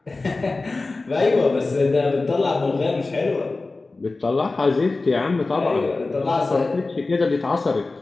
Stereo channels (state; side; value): quieter; right; 3.5 dB